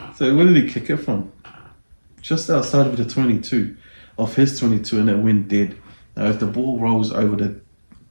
So where did he kick it from? Just outside of the 22, of his 22, and it went dead. Now if the ball rolls over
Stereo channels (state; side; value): inverted; both; correlation -1.00